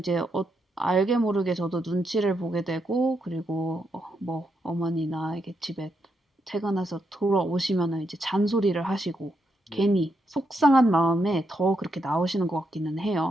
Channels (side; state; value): both; normal; correlation 0.81